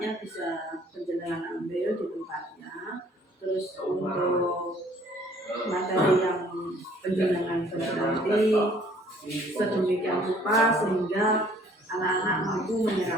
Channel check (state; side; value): normal; both; correlation 0.58